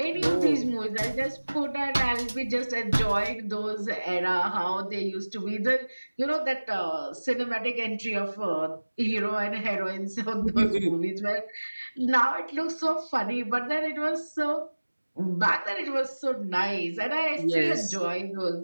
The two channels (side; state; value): both; inverted; correlation -1.00